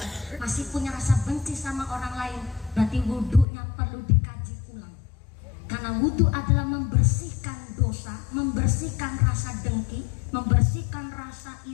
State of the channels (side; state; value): right; drops out; at 3.5 s